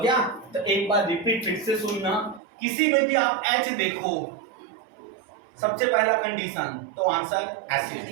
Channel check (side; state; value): left; drops out; at 2.4 s